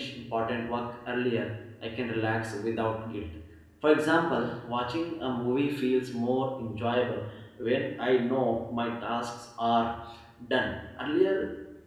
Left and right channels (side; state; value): both; identical; correlation 1.00